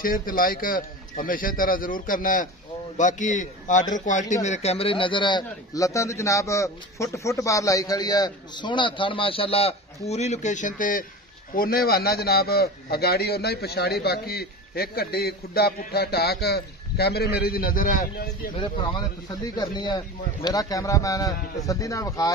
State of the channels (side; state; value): both; normal; correlation 0.31